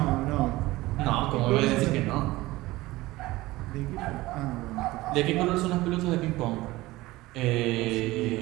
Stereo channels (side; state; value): left; quieter; 19.0 dB